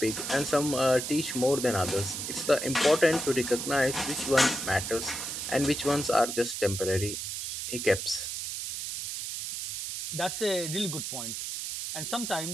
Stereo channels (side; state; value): right; noise; hiss, 5 dB below the sound